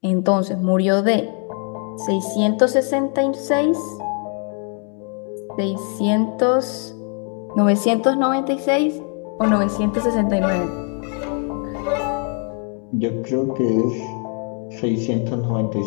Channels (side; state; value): right; quieter; 39.9 dB